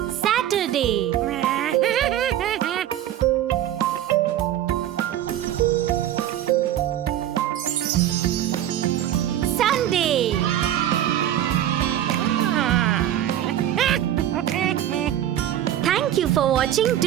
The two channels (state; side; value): quieter; left; 11.8 dB